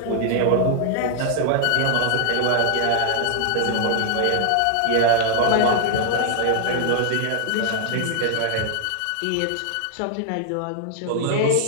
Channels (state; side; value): different; both; correlation -0.01